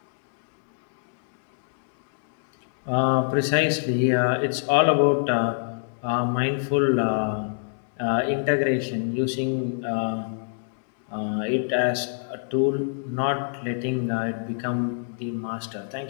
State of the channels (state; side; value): silent; right; digital silence